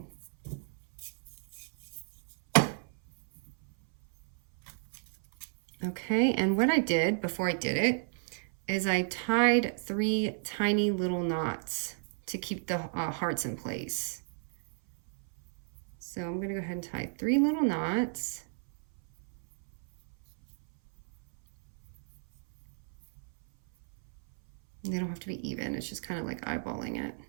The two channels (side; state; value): left; silent; 56 dB below the other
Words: Okay, and what I did before I did it is I tied 3 tiny little knots to keep the hearts in place. So I'm going to go ahead and tie 3 little knots. They don't have to be even, it's just kind of like eyeballing it.